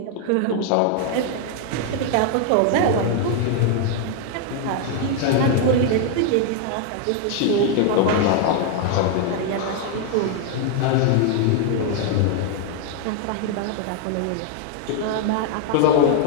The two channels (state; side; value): different; both; correlation 0.00